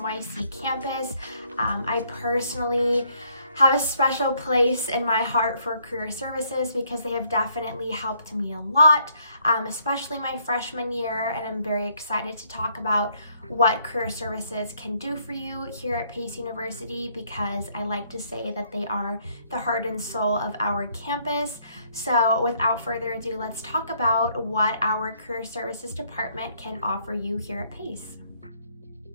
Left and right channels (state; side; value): inverted; both; correlation -0.67